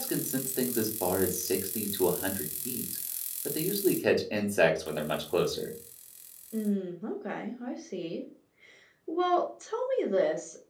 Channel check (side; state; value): both; identical; correlation 1.00